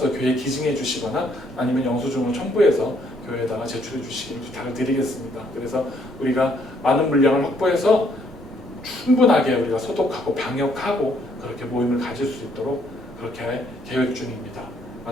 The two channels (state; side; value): normal; both; correlation 0.68